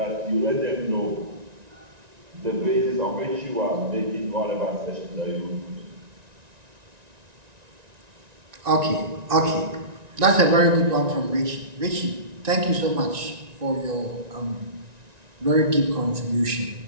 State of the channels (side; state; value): left; late; 1.9 ms